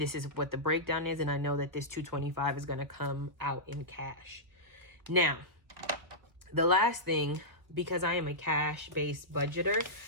is what the breakdown is. And I know that this 225 is going to come out in cash. Now, the last thing, because I am a cash-based budgeter,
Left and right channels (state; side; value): late; left; 1.3 ms